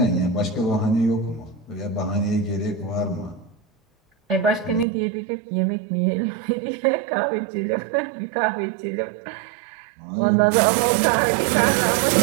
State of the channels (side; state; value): left; drops out; at 4.9 s